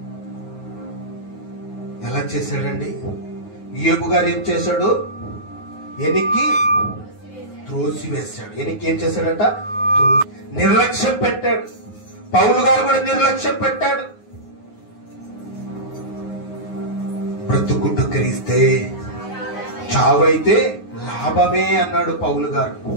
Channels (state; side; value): late; right; 9.5 ms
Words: ఎలా చేశాడండి? యోబు గారు ఏం చేశాడు? వెనక్కి త్రోసివేశాడు. వెనక్కి ఏం చేశాడట? నిర్లక్ష్యం పెట్టాడు. పౌలు గారు కూడా నిర్లక్ష్యం పెట్టాడు. బ్రతుకుడు క్రీస్తే, చావైతే లాభమే అన్నాడు పౌలు గారు.